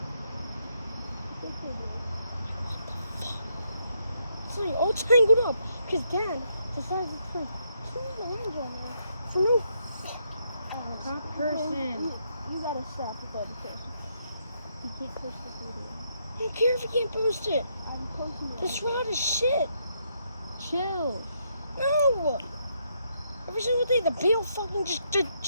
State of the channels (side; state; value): both; inverted; correlation -0.76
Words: Sorry, all tangled up because Dad decided to put 2 lines on there. So no. Top person. You gotta stop with all the person. You can't post this video. I don't care if you can't post it. I'm posting it. This rod is shit. Chill. No. Every single day the bill fucking just